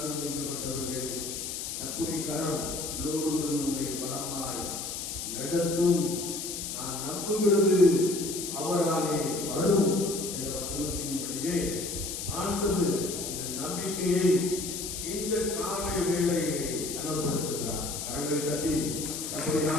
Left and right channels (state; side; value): noise; left; hiss, 5 dB below the sound